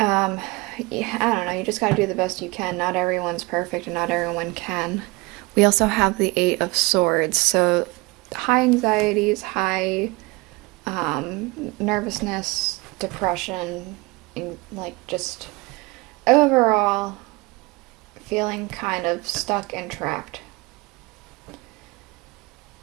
I don't know, you just gotta do the best you can. Not everyone's perfect and not everyone can. We also have the Eight of Swords, so high anxieties, high nervousness, depression, and like just overall feeling kind of stuck and trapped.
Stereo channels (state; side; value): quieter; left; 24.4 dB